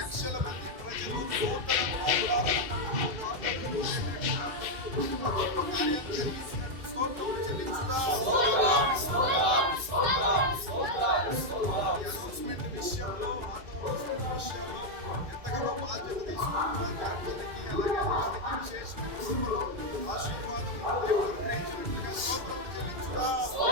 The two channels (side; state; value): left; late; 2.4 ms